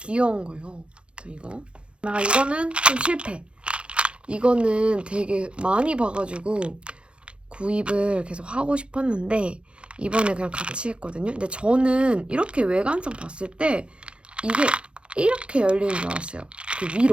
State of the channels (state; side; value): late; left; 0.057 ms